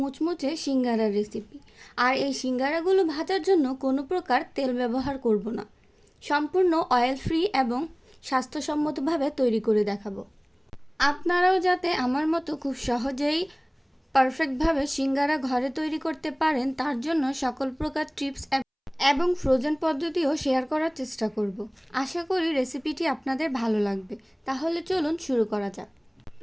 সিঙ্গারার রেসিপি। আর এই সিঙ্গারাগুলো ভাজার জন্য কোনো প্রকার তেল ব্যবহার করব না, সম্পূর্ণ অয়েল ফ্রি এবং স্বাস্থ্যসম্মতভাবে তৈরি করে দেখাবো। আপনারাও যাতে আমার মতো খুব সহজেই পারফেক্টভাবে সিঙ্গারা ঘরে তৈরি করতে পারেন, তার জন্য সকল প্রকার টিপস এবং ফ্রোজেন পদ্ধতিও শেয়ার করার চেষ্টা করব। আশা করি রেসিপিটি আপনাদের ভালো লাগবে। তাহলে চলুন শুরু করা যাক।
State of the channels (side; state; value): both; identical; correlation 1.00